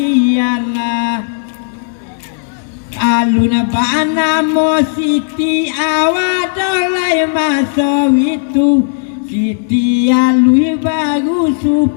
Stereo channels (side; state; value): right; silent; digital silence